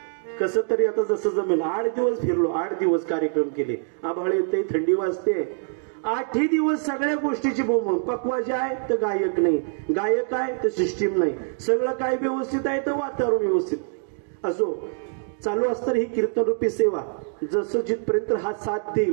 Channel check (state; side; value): silent; left; 62 dB below the other